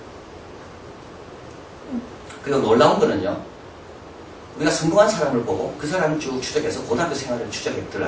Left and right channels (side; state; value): both; identical; correlation 1.00